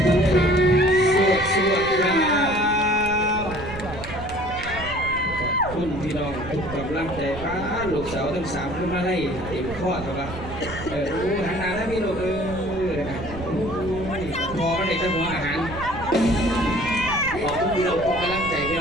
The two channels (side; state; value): right; noise; rumble, 11 dB below the sound